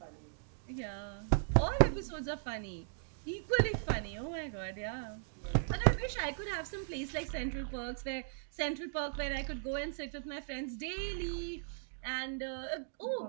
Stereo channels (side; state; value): left; silent; digital silence